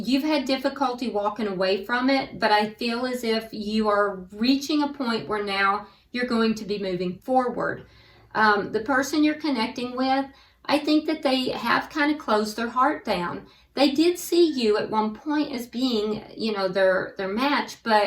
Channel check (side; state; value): both; identical; correlation 1.00